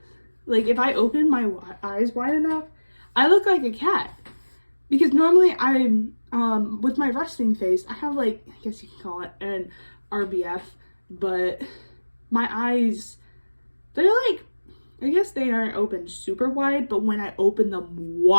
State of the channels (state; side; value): inverted; both; correlation -1.00